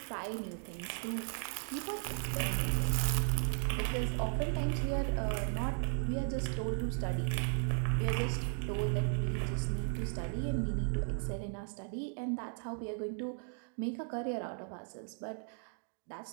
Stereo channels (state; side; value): silent; left; 54 dB below the other